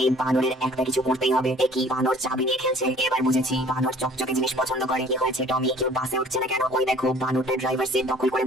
এই বানরের একটা কিছু করতেই হবে। এ কি বানর চাবি নিয়ে খেলছে? এবার বুঝেছি, বানর চকচকে জিনিস পছন্দ করে। কি হয়েছে টমি, কেউ বাসে উঠছে না কেন? ওই দেখো, বানরটা ড্রাইভার সিট দখল করে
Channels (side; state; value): both; normal; correlation 0.52